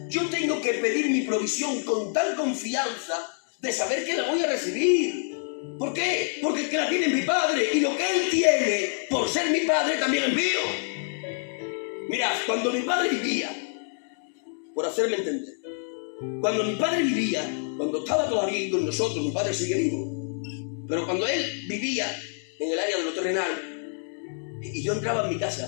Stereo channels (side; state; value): right; silent; 60 dB below the other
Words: Yo tengo que pedir mi provisión con tal confianza de saber que la voy a recibir. ¿Por qué? Porque el que la tiene es mi padre, y lo que él tiene por ser mi padre también es mío. Mirad, cuando mi padre vivía, por hacerme entender, cuando mi padre vivía, cuando estaba todavía con nosotros, mi padre sigue vivo, pero cuando él vivía en el área de lo terrenal, y yo entraba en mi